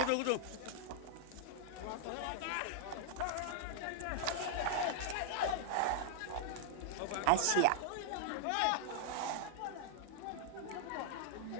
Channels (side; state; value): both; different; correlation -0.01